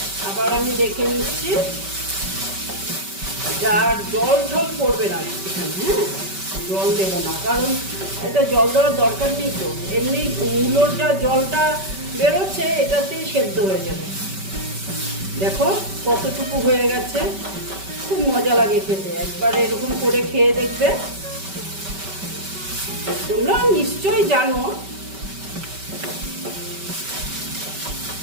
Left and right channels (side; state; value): left; late; 5.2 ms